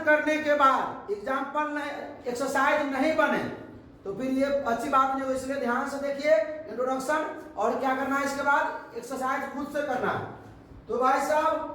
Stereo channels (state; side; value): identical; both; correlation 1.00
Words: करने के बाद एग्जाम्पल एक्सरसाइज नहीं बने तो फिर ये अच्छी बात नहीं हो, इसलिए ध्यान से देखिए इंट्रोडक्शन, और क्या करना है इसके बाद एक्सरसाइज खुद से करना है। तो भाई